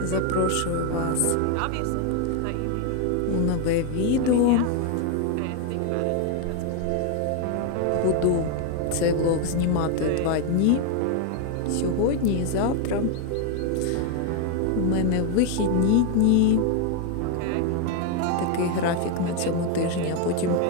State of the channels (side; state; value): both; different; correlation 0.01